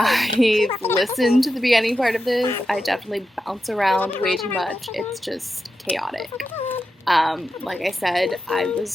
listened to the beginning part of this. I definitely bounce around way too much. It's just chaotic. Like I said, I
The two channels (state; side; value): normal; both; correlation 0.90